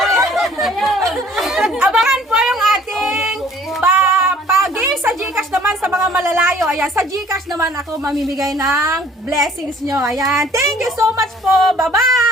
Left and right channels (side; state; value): both; normal; correlation 0.55